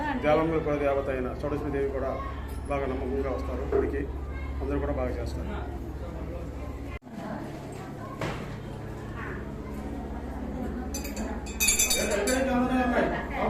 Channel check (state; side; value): identical; both; correlation 1.00